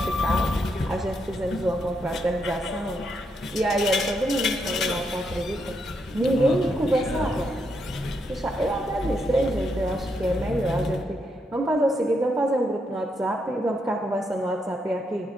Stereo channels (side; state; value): both; normal; correlation 0.79